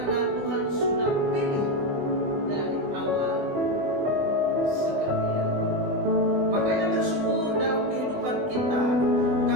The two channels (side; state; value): left; late; 20 ms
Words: Tuhan sudah pilih dari awal seperti itu. Makanya bersyukur dalam kehidupan kita